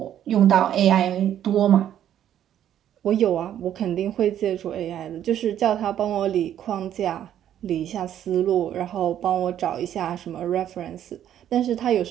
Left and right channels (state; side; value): quieter; left; 10.7 dB